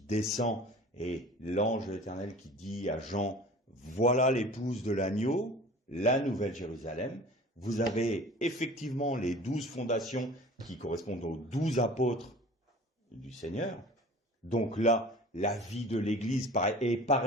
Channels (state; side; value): normal; both; correlation 0.42